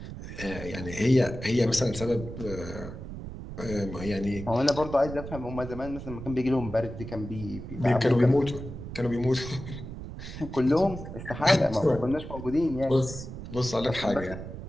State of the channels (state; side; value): noise; right; rumble, 10 dB below the sound